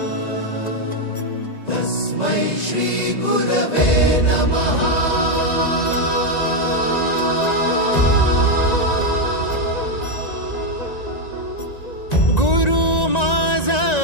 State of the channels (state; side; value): late; right; 1.9 ms